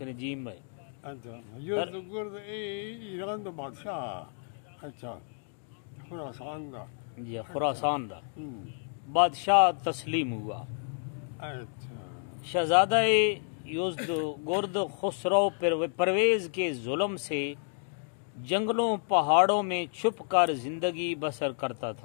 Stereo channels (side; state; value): right; silent; 57 dB below the other